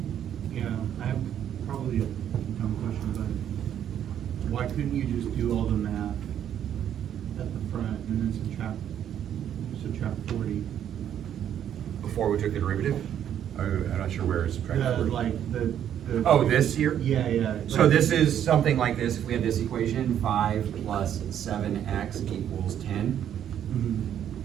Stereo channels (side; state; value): left; quieter; 9.9 dB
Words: Yeah, I have probably a dumb question, but why couldn't you just do all the math at the front and then subtract 40? Before we took the derivative? I'm not sure where it's subtracted. Like the. Oh, this here? Yeah, yeah. So like- this is something like this. If we had this equation, 5 plus 7x equals 10.